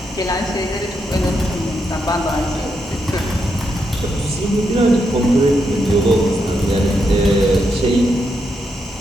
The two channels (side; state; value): both; normal; correlation 0.82